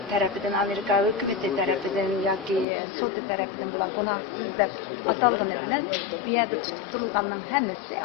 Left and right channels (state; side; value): drops out; right; at 2.7 s